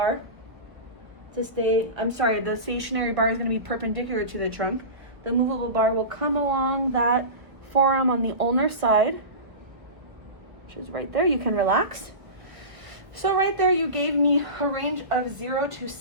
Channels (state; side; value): late; left; 1.1 ms